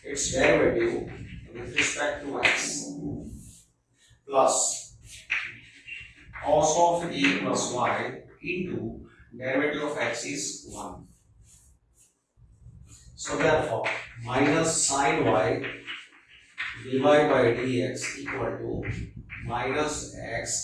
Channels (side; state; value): both; identical; correlation 1.00